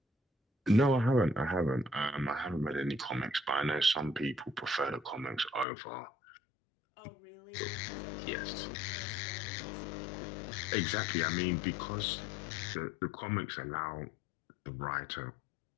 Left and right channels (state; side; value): drops out; right; at 5.7 s